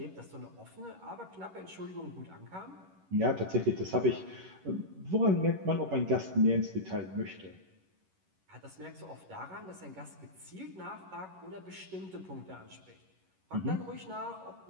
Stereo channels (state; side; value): late; left; 11 ms